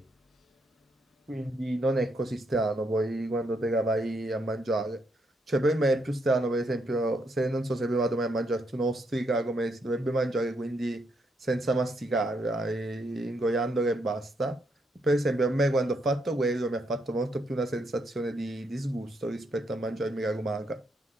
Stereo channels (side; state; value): both; normal; correlation 0.77